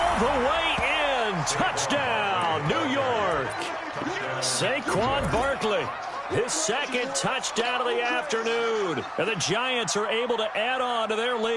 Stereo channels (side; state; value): both; identical; correlation 1.00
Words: the way in. Touchdown, New York. Saquon Barkley, his 2nd touchdown of the afternoon. And the Giants are able to add on to their